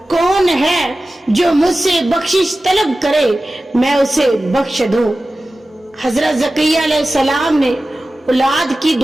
कौन है जो मुझसे बख्शिश तलब करे मैं उसे बख्श दूं। हजरत ज़करिया अलैहिस्सलाम ने औलाद की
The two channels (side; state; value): both; normal; correlation 0.95